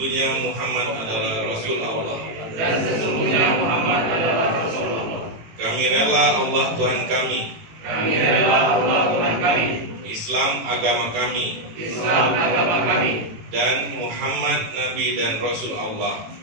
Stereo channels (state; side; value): late; left; 18 ms